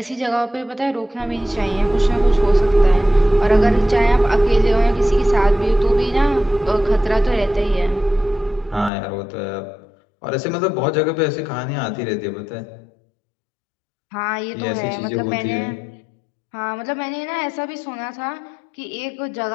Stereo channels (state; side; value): drops out; right; at 8.9 s